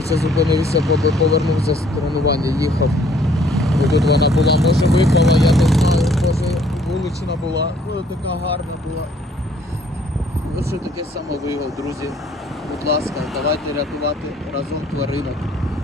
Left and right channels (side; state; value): both; normal; correlation 0.62